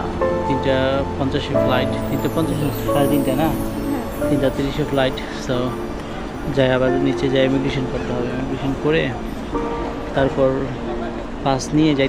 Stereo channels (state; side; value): identical; both; correlation 1.00